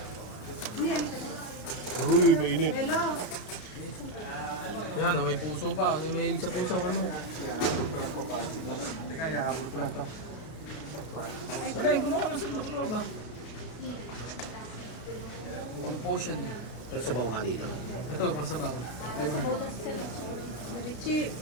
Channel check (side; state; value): right; late; 33 ms